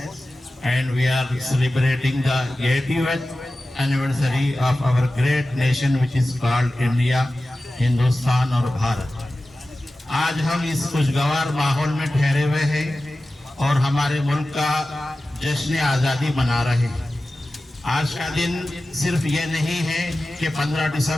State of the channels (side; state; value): both; normal; correlation 0.95